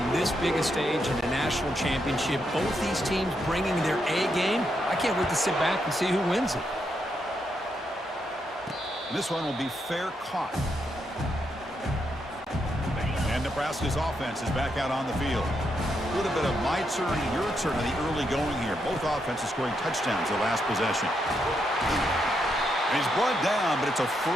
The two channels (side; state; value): both; normal; correlation 0.80